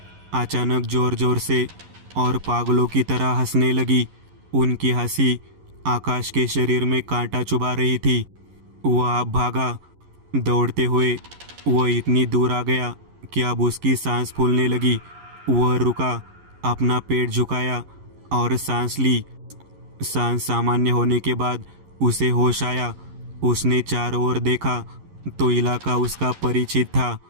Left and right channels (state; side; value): late; left; 11 ms